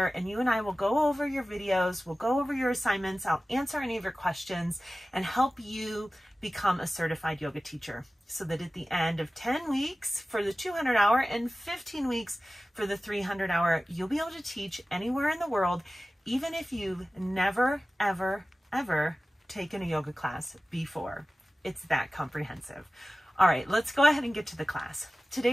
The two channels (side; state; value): both; normal; correlation 0.96